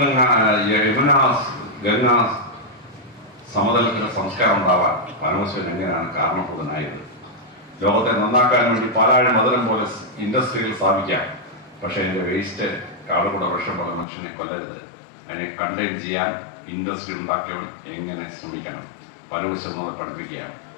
യമുന ഗംഗ സമതലത്തിന്റെ സംസ്കാരം ഉണ്ടാവാൻ പരമശിവൻ എങ്ങനെയാണ് കാരണഭൂതനായത്? ലോകത്തെ നന്നാക്കാൻ വേണ്ടി പാലാഴി മധുരം പോലെ ഇൻഡസ്ട്രികൾ സ്ഥാപിക്കാം. പക്ഷെ അതിൻ്റെ വേസ്റ്റ് കാടുകൂടെ വിഷം പോലെ മനുഷ്യനെ കൊല്ലരുത്. അതിനെ കണ്ടെയ്ൻ ചെയ്യാൻ ഇൻഡസ്ട്രി ഉണ്ടാക്കിയവൻ എങ്ങനെ ശ്രമിക്കണം? പരമശിവൻ നമ്മളെ പഠിപ്പിക്കുകയാണ്.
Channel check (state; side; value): drops out; right; at 14.1 s